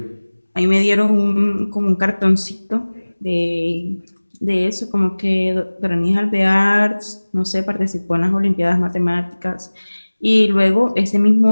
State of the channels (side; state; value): both; inverted; correlation -1.00